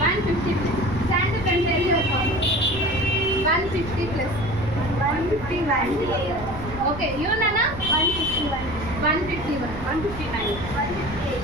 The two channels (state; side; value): noise; right; rumble, 11 dB below the sound